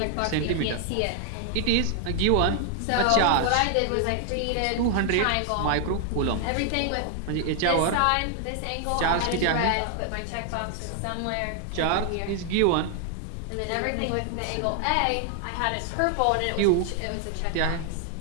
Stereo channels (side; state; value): both; different; correlation 0.00